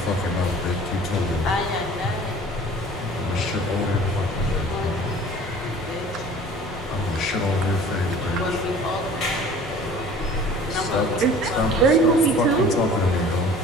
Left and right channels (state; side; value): normal; both; correlation 0.46